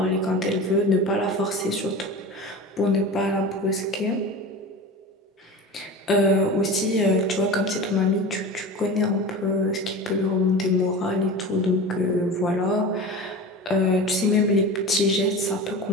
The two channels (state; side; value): normal; both; correlation 0.32